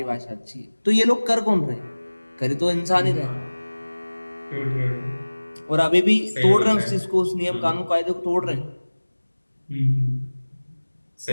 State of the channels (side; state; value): both; inverted; correlation -1.00